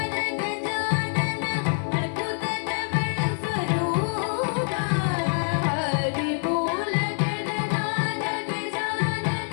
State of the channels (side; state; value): right; silent; 61 dB below the other